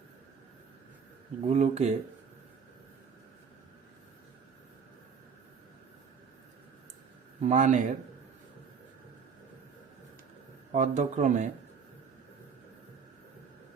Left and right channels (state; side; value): quieter; left; 6.2 dB